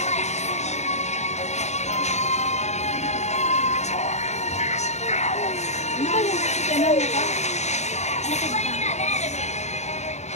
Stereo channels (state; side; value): late; right; 0.33 ms